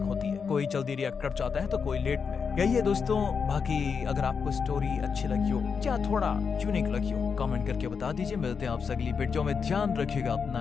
होती है, कोई जल्दी रिएक्ट कर जाता है तो कोई लेट में। यही है दोस्तों। बाकी अगर आपको स्टोरी अच्छी लगी हो या थोड़ा यूनिक लगी हो, कमेंट करके बता दीजिए। मिलते हैं आपसे अगली वीडियो में, ध्यान रखिएगा अपना।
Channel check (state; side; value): quieter; right; 5.9 dB